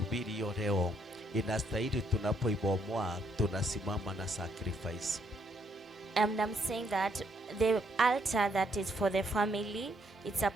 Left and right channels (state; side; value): normal; both; correlation 0.72